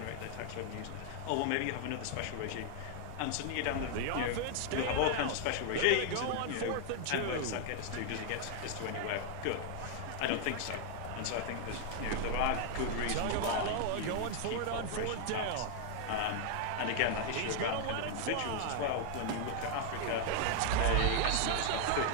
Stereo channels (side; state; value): both; different; correlation 0.00